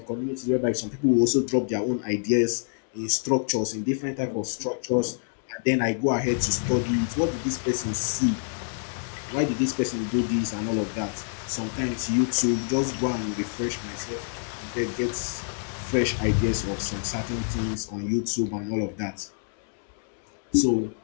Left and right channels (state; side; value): silent; right; digital silence